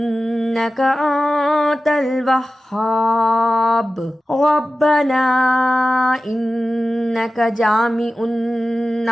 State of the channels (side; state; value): both; normal; correlation 0.95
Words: انت الوہاب. ربنا انک جامع